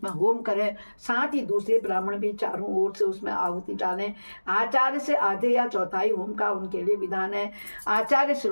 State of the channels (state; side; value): inverted; both; correlation -1.00